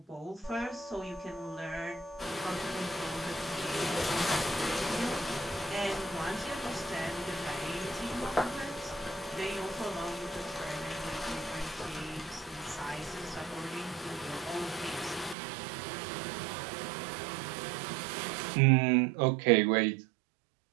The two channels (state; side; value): drops out; left; at 15.4 s